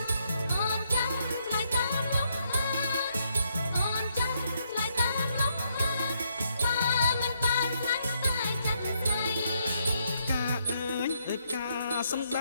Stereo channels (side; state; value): both; inverted; correlation -0.75